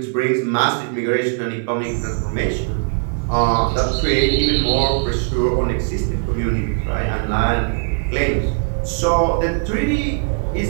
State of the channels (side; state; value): left; silent; 58 dB below the other